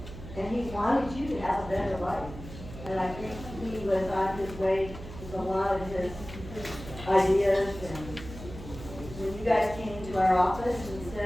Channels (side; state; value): right; noise; hum, 13 dB below the sound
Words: and he wanted you to have a better life. And I think he was on his way with a lot of his ideas. And when you guys came to our office and